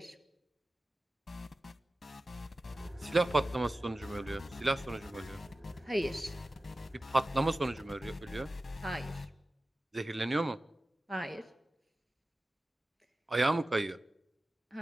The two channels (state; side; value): normal; both; correlation 0.95